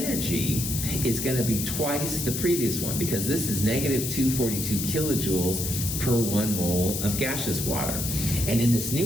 is going to be twice the previous one, because this is negative 242 kilojoules per 1 mole of gaseous water. And in this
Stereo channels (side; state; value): left; noise; hiss, 3 dB below the sound